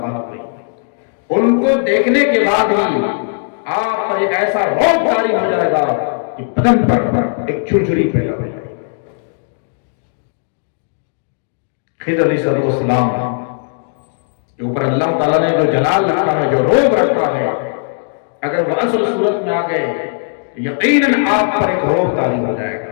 ہوئی۔ ان کو دیکھنے کے بعد ہی آپ پر ایک ایسا روب جاری ہو جائے گا کہ بدن پر ایک جھرجھری پیدا ہو جائے گی۔ خضر علیہ السلام کے اوپر اللہ تعالیٰ نے جو جلال رکھا ہے، جو روب رکھا ہے، اگر وہ اصل صورت میں آ گئے تو یقیناً آپ پر ایک روب طاری ہو جائے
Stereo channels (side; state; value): right; silent; digital silence